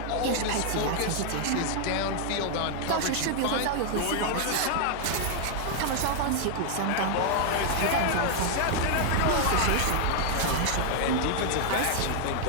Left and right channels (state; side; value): different; both; correlation 0.00